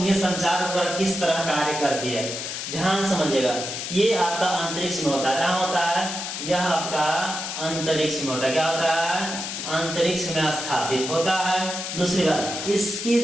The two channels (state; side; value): noise; left; hiss, 5 dB below the sound